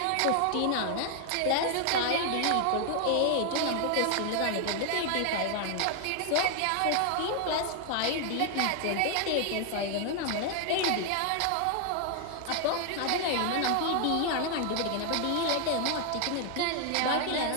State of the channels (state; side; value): different; both; correlation 0.00